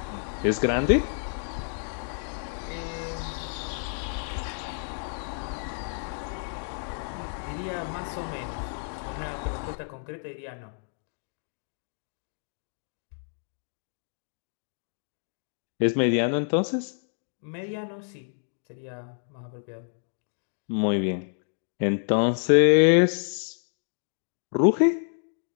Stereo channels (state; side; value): silent; right; digital silence